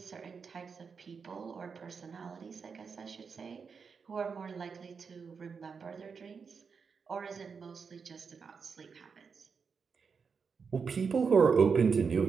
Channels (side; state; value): left; quieter; 5.7 dB